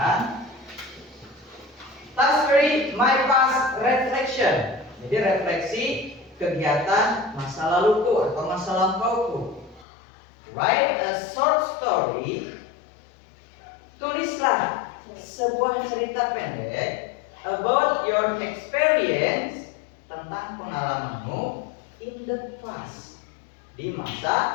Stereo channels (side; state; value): right; drops out; at 9.9 s